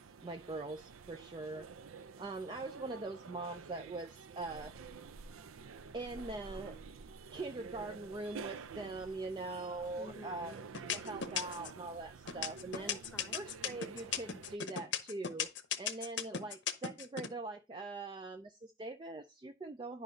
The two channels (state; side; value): normal; both; correlation 0.25